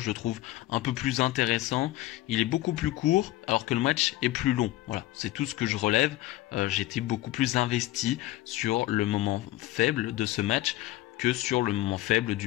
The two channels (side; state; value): right; quieter; 16.4 dB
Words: le trouve un peu plus intéressant. Il est beaucoup plus court, alors que le match est plus long. Voilà, c'est tout ce que je relève. J'étais beaucoup plus investi sur le moment faible de ce match. que sur le moment faible